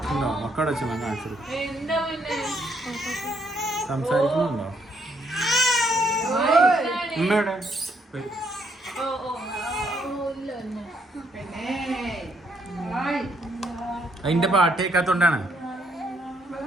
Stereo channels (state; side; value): normal; both; correlation 0.72